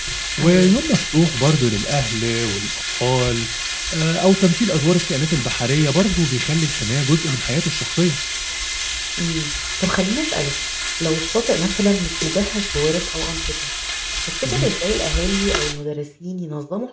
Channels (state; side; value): identical; both; correlation 1.00